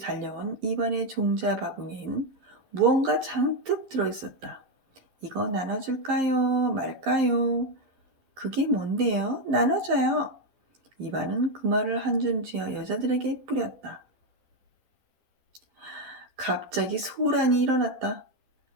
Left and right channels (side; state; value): left; late; 11 ms